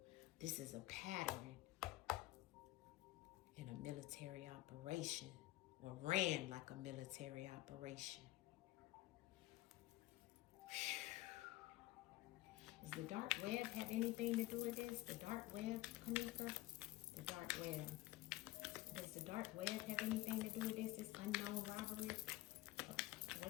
This is a pattern in a military operation, or ran like a military operation. Does the dark web have anything to do with this? The dark web, Kanika? The dark web. Does the dark web have anything to do with this? This unknown robbery?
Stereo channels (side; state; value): right; quieter; 17.8 dB